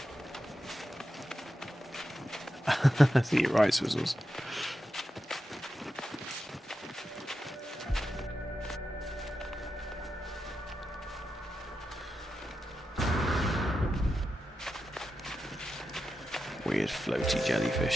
I think you're right, Swizzles. Weird floaty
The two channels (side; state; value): both; normal; correlation 0.89